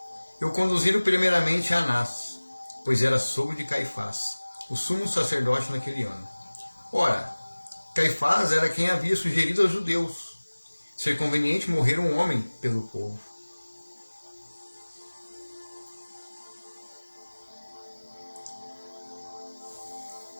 E o conduziram primeiramente a Anás, pois era sogro de Caifás, o sumo sacerdote naquele ano. Ora, Caifás era quem havia sugerido aos judeus ser conveniente morrer um homem pelo povo.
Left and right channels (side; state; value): both; inverted; correlation -1.00